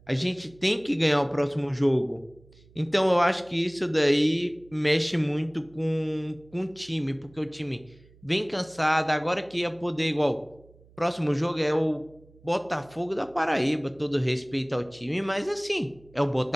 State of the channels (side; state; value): right; noise; hum, 27 dB below the sound